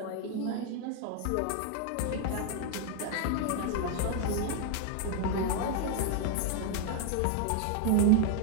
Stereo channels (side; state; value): both; different; correlation 0.00